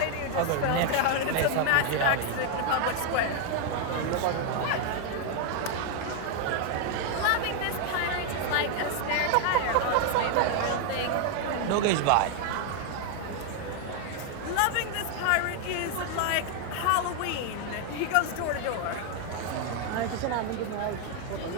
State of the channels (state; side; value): different; both; correlation 0.01